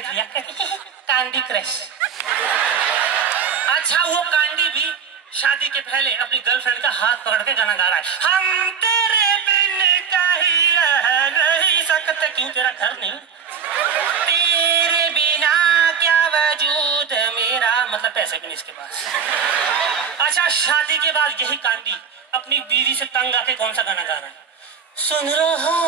लिया? कांडी क्रश। अच्छा वो कांडी भी शादी के पहले अपनी गर्लफ्रेंड का हाथ पकड़ के गाना गा रहा है, हम तेरे बिन कहीं रह नहीं सकते। क्यों तेरा घर नहीं? तेरे बिना क्या वजूद मेरा, मतलब पैसे भी नहीं इसके पास। अच्छा शादी के बाद यही कांडी अपनी बीवी से तंग आके कौन सा गाना गा रहा है? सुन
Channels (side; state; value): left; quieter; 6.8 dB